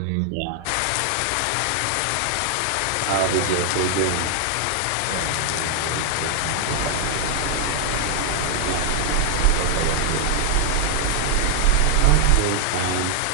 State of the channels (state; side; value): different; both; correlation 0.00